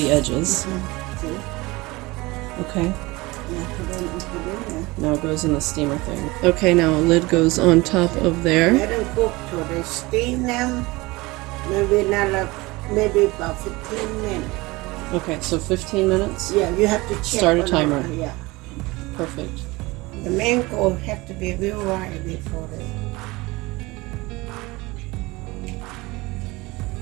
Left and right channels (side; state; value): left; quieter; 22.3 dB